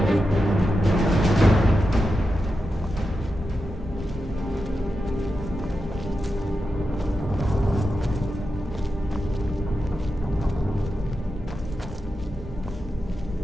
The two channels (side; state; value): both; normal; correlation 0.89